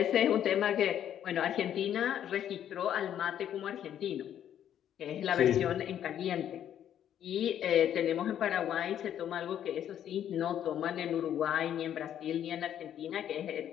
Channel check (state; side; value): quieter; right; 10.2 dB